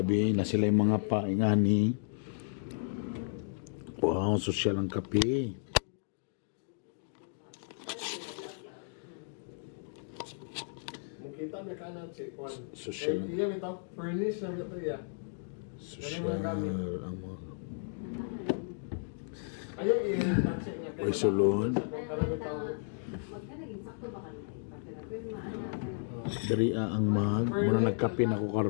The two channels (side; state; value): right; silent; digital silence